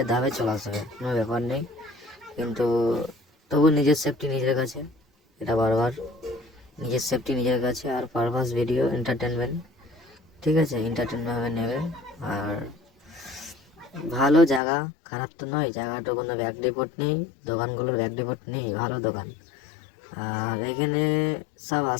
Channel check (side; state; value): right; drops out; at 14.6 s